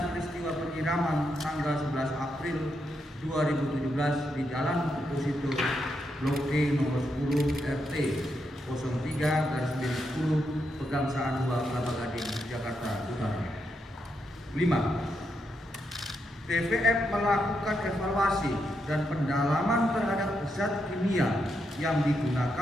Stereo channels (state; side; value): normal; both; correlation 0.82